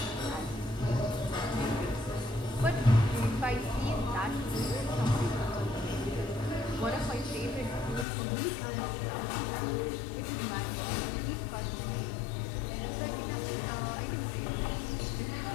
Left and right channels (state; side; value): drops out; right; at 8.1 s